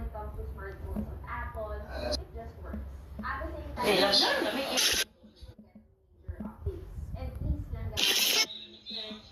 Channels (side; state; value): both; identical; correlation 1.00